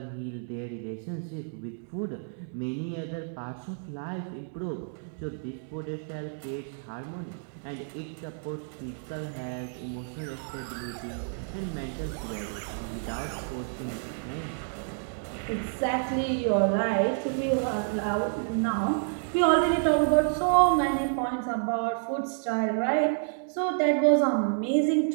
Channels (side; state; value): left; silent; digital silence